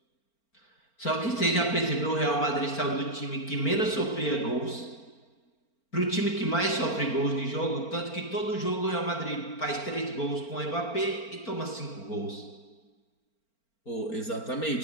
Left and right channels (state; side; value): late; right; 4.4 ms